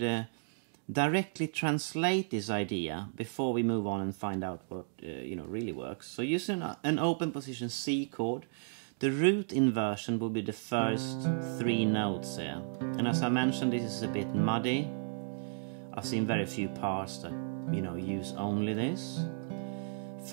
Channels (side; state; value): left; silent; digital silence